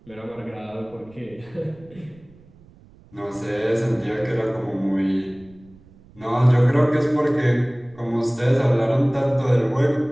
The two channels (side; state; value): right; noise; rumble, 26 dB below the sound